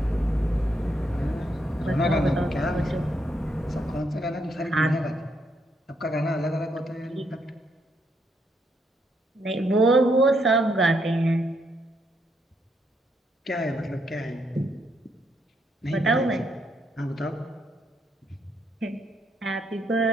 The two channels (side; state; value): both; normal; correlation 0.76